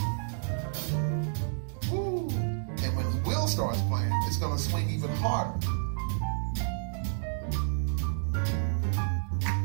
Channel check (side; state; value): left; silent; digital silence